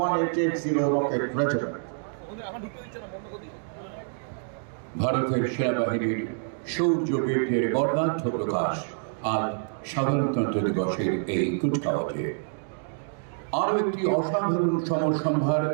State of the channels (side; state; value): left; silent; digital silence